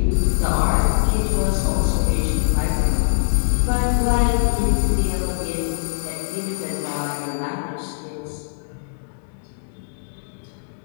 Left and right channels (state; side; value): silent; right; 64 dB below the other